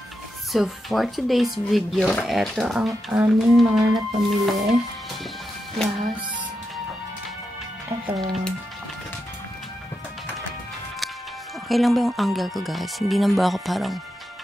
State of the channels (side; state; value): both; normal; correlation 0.86